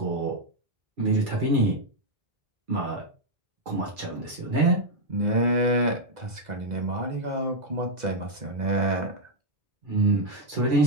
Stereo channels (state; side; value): late; left; 2.0 ms